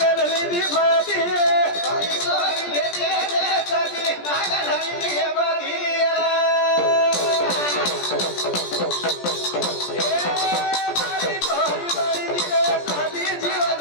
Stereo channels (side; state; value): right; late; 17 ms